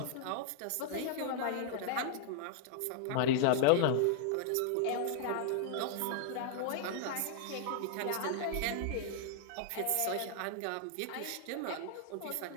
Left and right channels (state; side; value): different; both; correlation -0.01